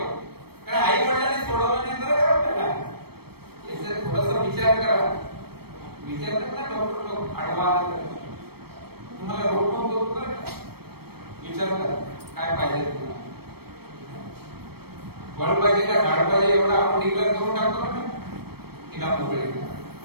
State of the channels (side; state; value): left; late; 0.96 ms